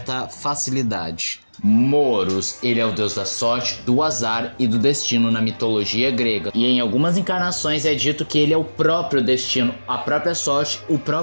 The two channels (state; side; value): inverted; both; correlation -1.00